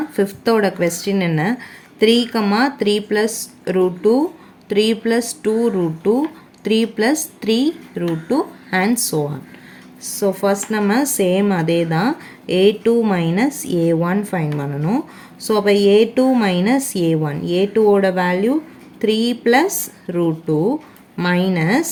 ஃபிஃப்த்தோட கொஸ்டின் என்ன 3, 3 plus √2, 3 plus 2 √2, 3 plus 3 √2 and so on. So first நம்ம சேம் அதே தான் A2 மைனஸ் A1 ஃபைன் பண்ணணும். ஸோ அப்போ A2 மைனஸ் A1, A2ஓட வேல்யூ 3 ப்ளஸ் √2 மைனஸ்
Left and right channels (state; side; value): identical; both; correlation 1.00